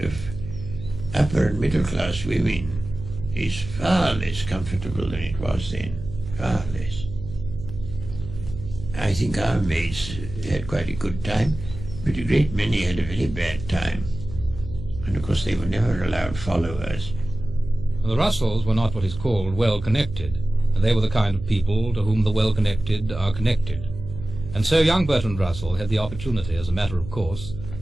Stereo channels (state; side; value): noise; right; hum, 11 dB below the sound